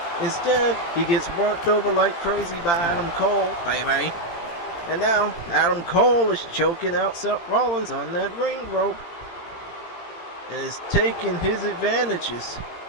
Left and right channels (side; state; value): right; late; 18 ms